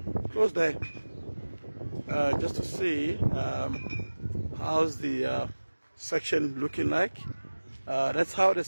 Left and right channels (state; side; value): inverted; both; correlation -1.00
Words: close there, just to see how's the section looking like. That's how the